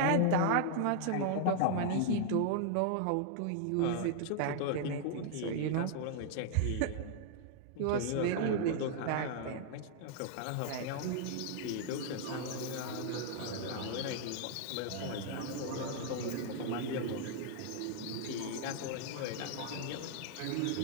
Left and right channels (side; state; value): both; different; correlation -0.01